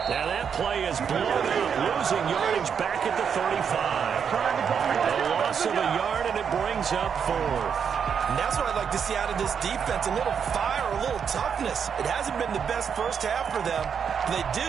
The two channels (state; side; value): quieter; left; 7.2 dB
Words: Now that play is blown up, losing yardage back at the 35. A loss of a yard, and it brings up 4th. And that's what I'd like to see out of this defense, a little fire, a little toughness. It hasn't been the best first half for them, but they did